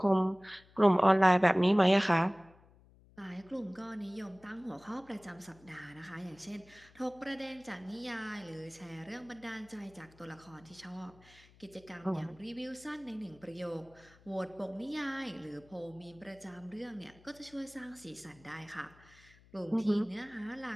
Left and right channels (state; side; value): noise; left; hum, 26 dB below the sound